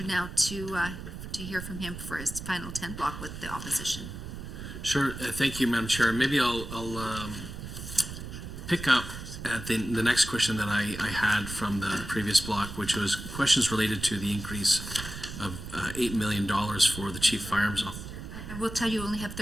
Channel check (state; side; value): noise; right; rumble, 9 dB below the sound